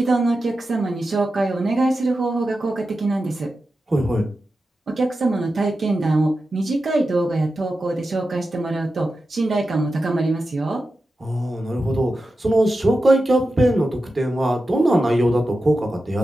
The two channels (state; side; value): normal; both; correlation 0.91